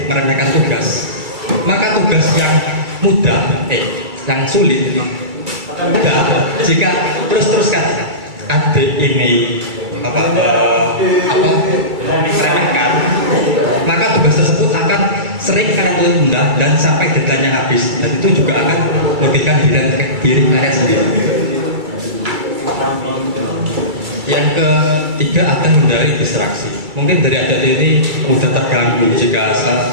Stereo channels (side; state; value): left; late; 2.3 ms